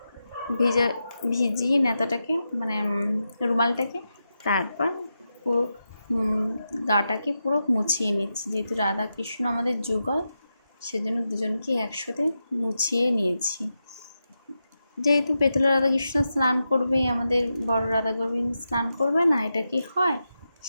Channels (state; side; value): inverted; both; correlation -0.89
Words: ভিজিয়ে নেতাটাকে রুমালটাকে, তারপর পুরো গাটাকে পুরো মুছিয়ে নিচ্ছি। যেহেতু রাধা কৃষ্ণ আমাদের যুগল, সেজন্য দুজনকে একসাথে মুছিয়ে নিয়েছি। যেহেতু পেতলের রাধাকৃষ্ণ স্নান করবে, আমাদের বড় রাধা গোবিন্দ স্নান করবে না, এটা কি হয়?